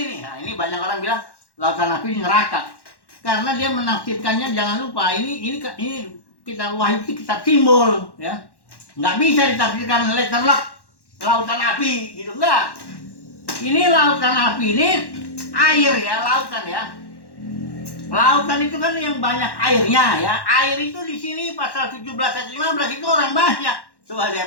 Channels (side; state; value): right; late; 1.1 ms